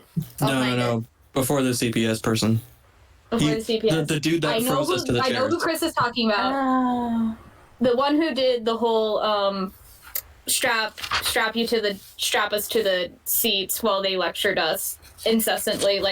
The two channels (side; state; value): both; identical; correlation 1.00